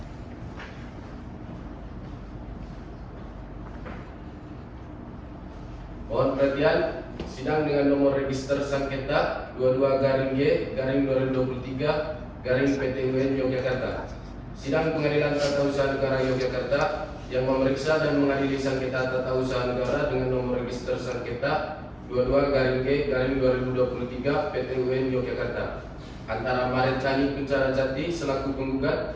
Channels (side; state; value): both; identical; correlation 1.00